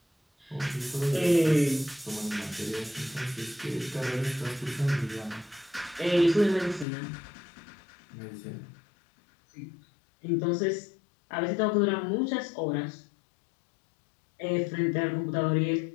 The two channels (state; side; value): drops out; right; at 6.9 s